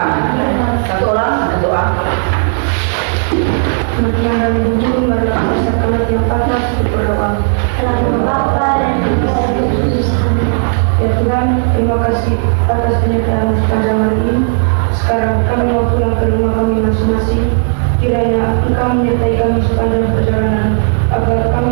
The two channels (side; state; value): left; silent; digital silence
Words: Satu orang berdoa. Semakin dari bumi mereka pasarkan yang panas untuk berdoa. Dalam Bapa dan Putra dan Roh Kudus. Ya Tuhan, terima kasih atas penyertaan sepanjang hari ini. Sekarang kami mau pulang ke rumah kami masing-masing. Kiranya Engkau menyertai kami sepanjang perjalanan, agar kami